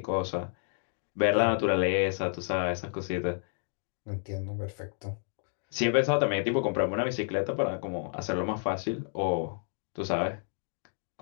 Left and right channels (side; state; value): right; silent; digital silence